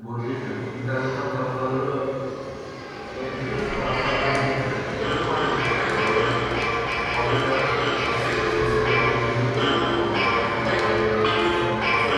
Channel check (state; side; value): identical; both; correlation 1.00